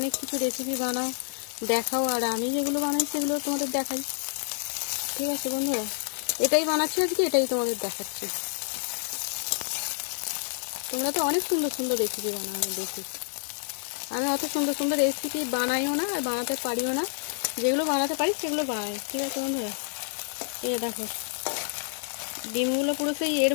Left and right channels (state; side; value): silent; right; 59 dB below the other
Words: কিছু রেসিপি বানাও দেখাও, আর আমি যেগুলো বানাই সেগুলো তোমাদের দেখাই। ঠিক আছে বন্ধুরা, এটাই বানাচ্ছি আজকে, এটাই তোমাদের দেখাচ্ছি। তোমরা তো অনেক সুন্দর সুন্দর রেসিপি বানাও আমি দেখি, আমি অত সুন্দর সুন্দর রেসিপি বানাইও না আর বানাতে পারিও না, যেগুলো বানাতে পারি সেগুলো বানাই। ঠিক আছে বন্ধুরা, এই দেখো ডিমগুলো পুরো সেই এর